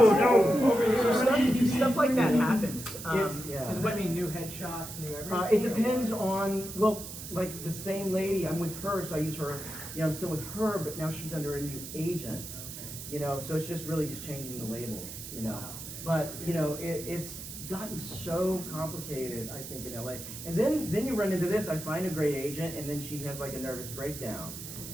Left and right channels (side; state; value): right; noise; hiss, 10 dB below the sound